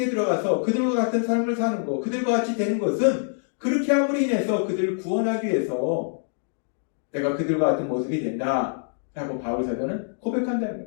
들어가서 그들과 같은 삶을 사는 것, 그들과 같이 되는 것은 그렇게 함으로 인해서 그들을 구원하기 위해서 내가 그들과 같은 모습이 된다 라고 바울 사도는 고백한다는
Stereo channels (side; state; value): right; silent; digital silence